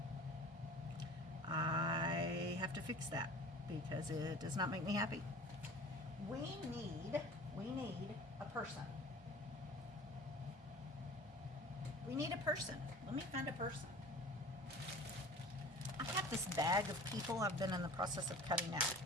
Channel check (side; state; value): both; normal; correlation 0.42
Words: I have to fix that because it does not make me happy. We need a person. We need a person. Let me find a person. I have this bag of people I've been in the process of cutting out.